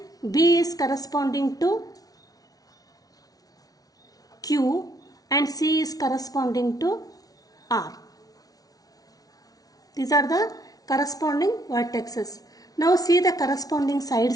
B is corresponding to Q and C is corresponding to R. These are the corresponding vertexes. Now see the corresponding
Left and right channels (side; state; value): right; late; 0.18 ms